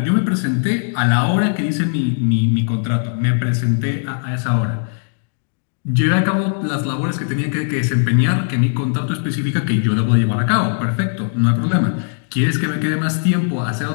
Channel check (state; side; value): silent; right; digital silence